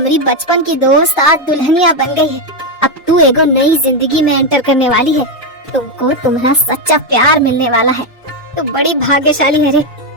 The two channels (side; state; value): both; normal; correlation 0.06